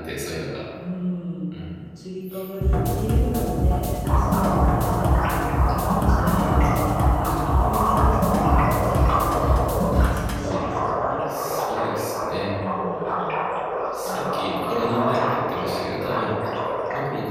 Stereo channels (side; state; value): both; identical; correlation 1.00